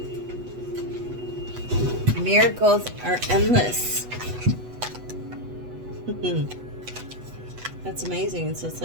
Miracles are endless. That's amazing. So it's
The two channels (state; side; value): late; left; 8.1 ms